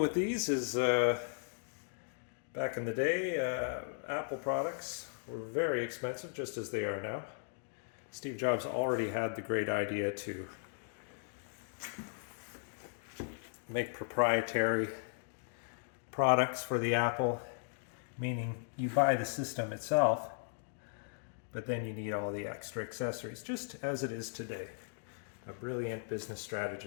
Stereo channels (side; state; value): right; silent; digital silence